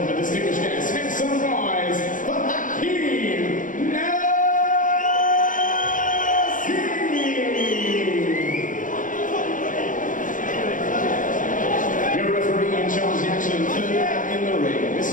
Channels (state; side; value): late; right; 0.38 ms